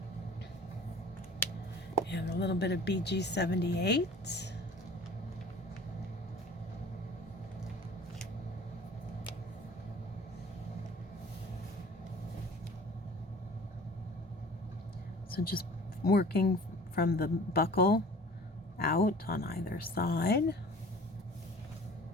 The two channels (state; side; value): normal; both; correlation 0.45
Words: And a little bit of BG78. So just working from the buckle out on either side.